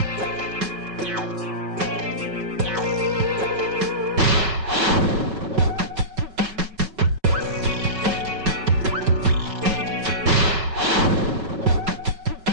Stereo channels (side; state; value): left; late; 5.3 ms